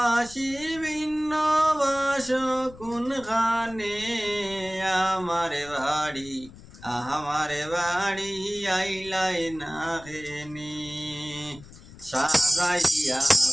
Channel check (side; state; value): left; noise; rumble, 19 dB below the sound